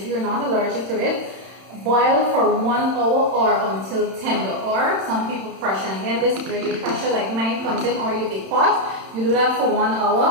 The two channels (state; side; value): late; left; 31 ms